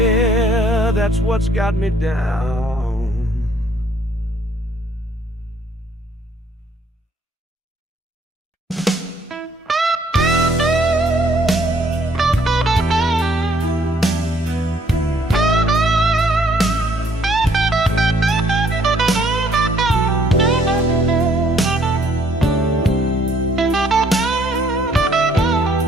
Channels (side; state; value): both; normal; correlation 0.64